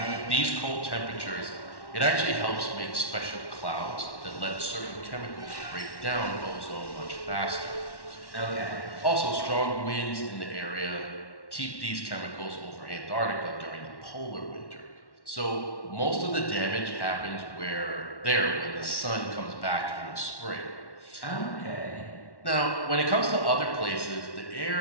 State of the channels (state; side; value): late; right; 1.1 ms